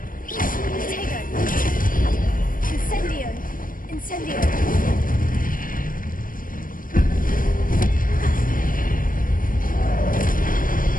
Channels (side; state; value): right; late; 0.40 ms